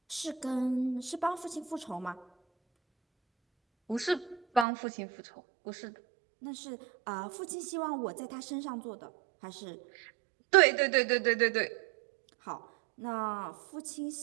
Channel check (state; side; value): drops out; left; at 4.7 s